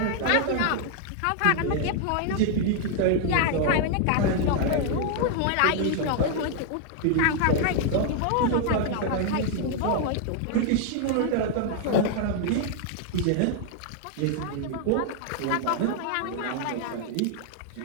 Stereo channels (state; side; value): different; both; correlation 0.00